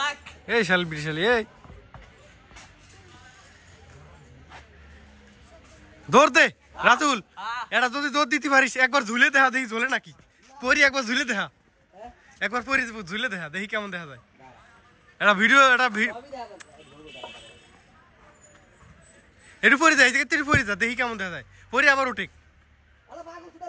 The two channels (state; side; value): identical; both; correlation 1.00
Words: এই শাল বিশাল এই দৌড় দে রাতুল, এটা যদি দৌড় দিতে পারিস একবার ঝুলে দেখা দেখি ঝোলে নাকি পরি, একবার ঝুলে দেখা একবার পরি ঝুলে দেখা দেখি কেমন দেখা যায়। এটা ভিডিও এটা একটু পরে যায় একটু পরে যা দেখি কেমন দেখা যায়, পরে আবার উঠে